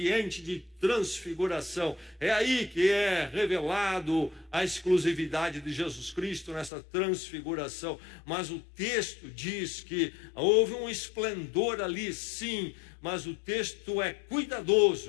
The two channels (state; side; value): drops out; right; at 6.7 s